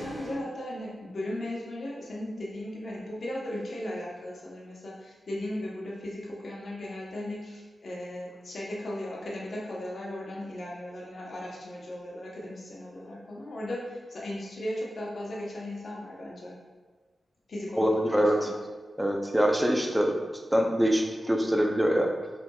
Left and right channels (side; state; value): both; normal; correlation 0.94